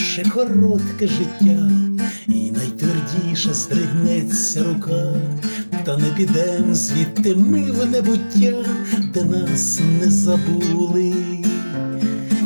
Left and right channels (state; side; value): inverted; both; correlation -1.00